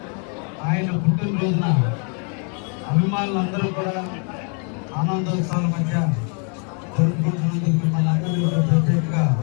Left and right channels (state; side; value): quieter; right; 39.1 dB